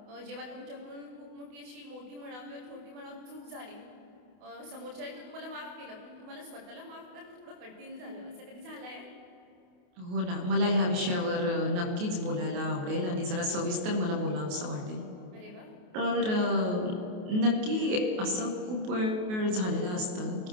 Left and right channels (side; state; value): left; late; 28 ms